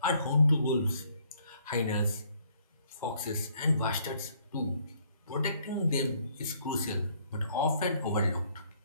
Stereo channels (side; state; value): both; inverted; correlation -0.65